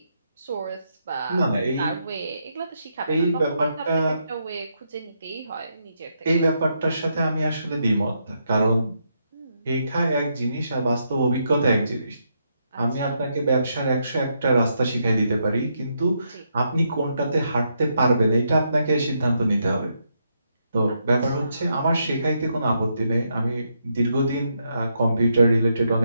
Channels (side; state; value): both; inverted; correlation -0.79